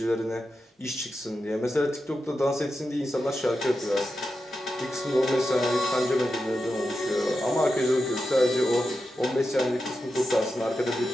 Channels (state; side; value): normal; both; correlation 0.89